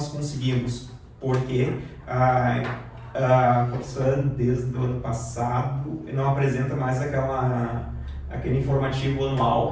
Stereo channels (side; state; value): both; identical; correlation 1.00